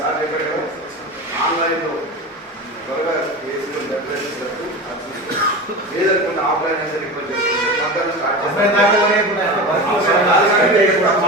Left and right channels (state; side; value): normal; both; correlation 0.27